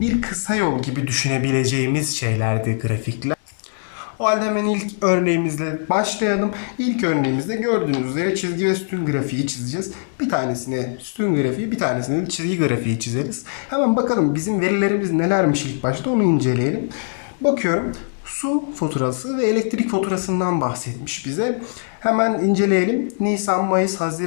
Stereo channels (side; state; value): right; silent; digital silence